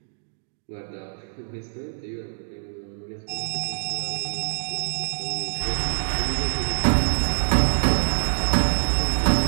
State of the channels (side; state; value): left; silent; digital silence